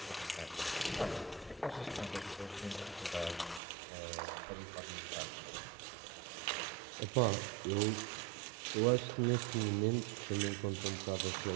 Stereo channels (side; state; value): left; drops out; at 3.6 s